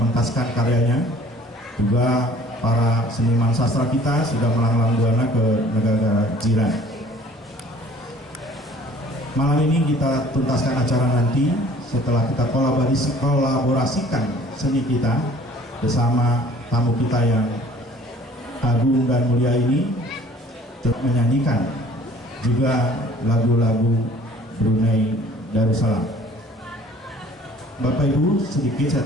karyanya. Juga para seniman sastra kita sudah melanglang buana ke negara-negara jiran. Malam ini kita tuntaskan acara nanti setelah kita kolaborasikan seni kita bersama tamu kita yang agung dan mulia ini, menyanyikan juga lagu-lagu Brunei Darussalam. Bapak Ibu, sedikit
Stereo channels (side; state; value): both; normal; correlation 0.52